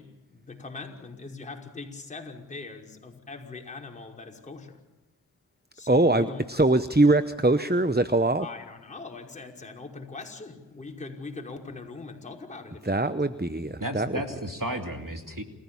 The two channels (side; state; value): both; normal; correlation 0.46